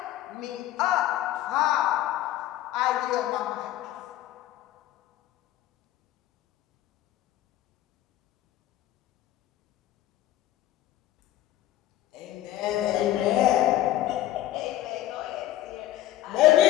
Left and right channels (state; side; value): quieter; right; 13.6 dB